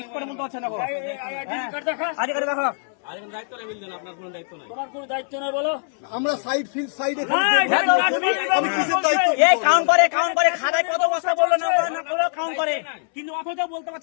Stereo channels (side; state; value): right; silent; 64 dB below the other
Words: করে বলতে পারছে না আগে করে দেখো আমরা সাইড ফিল্ড সাইডে কাউন্ট করে খাতায় কত বস্তা বললো না কাউন্ট করে কিন্তু অথচ বলতে